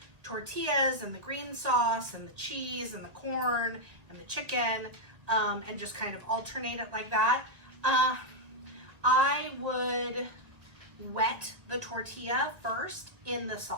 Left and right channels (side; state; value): left; late; 1.9 ms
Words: tortillas and the green sauce and the cheese and the corn and the chicken, and just kind of alternate it like that. I would wet the tortilla first in the